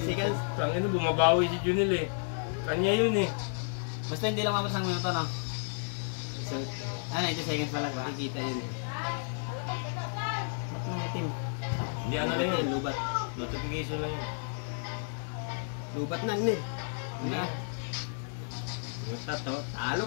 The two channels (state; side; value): silent; right; digital silence